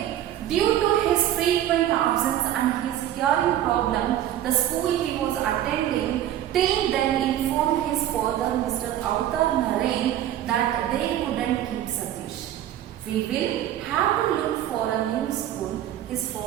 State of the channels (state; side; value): quieter; left; 12.0 dB